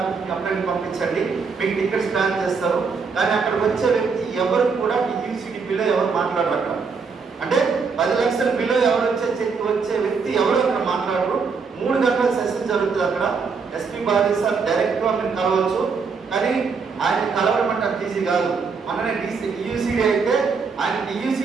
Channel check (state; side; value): quieter; left; 5.2 dB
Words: కంప్లైంట్ పంపించండి, మీకు టికెట్స్ ప్లాన్ చేస్తారు. కానీ అక్కడికి వచ్చే వ్యక్తి ఎవరు కూడా యూసీడీ బిలో ఎవరు మాట్లాడరు అక్కడ. అంటే 10 లక్షల బిలో ఎవరు వచ్చే వ్యక్తి ఎవరు అక్కడ మాట్లాడరు. 3 గంటల సెషన్ జరుగుతుంది అక్కడ. ఎస్పీ బాలాజీ సార్ డైరెక్ట్గా మీరు కలవచ్చు, కానీ ఆయన కలవడం అంటే అంత ఈజీ కాదు. మననే యూసీడీ అయితే ఆయన